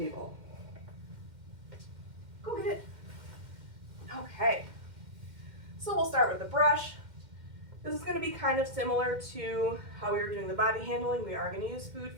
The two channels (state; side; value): late; left; 2.1 ms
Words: Go get it. Okay. So we'll start with the brush. This is going to be kind of similar to how we were doing the body handling. We are going to use food